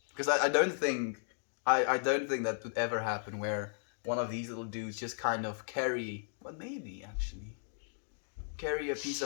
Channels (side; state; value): right; silent; digital silence